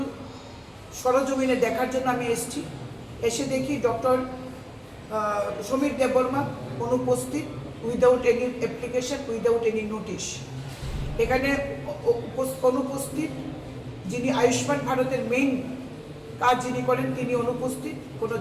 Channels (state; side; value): identical; both; correlation 1.00